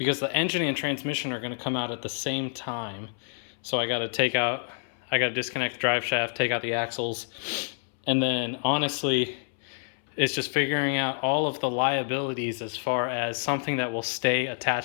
the engine and transmission are going to come out at the same time. So I got to disconnect the drive shaft, take out the axles, and then honestly, it's just figuring out all of the liabilities as far as something that will stay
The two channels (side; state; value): right; silent; 59 dB below the other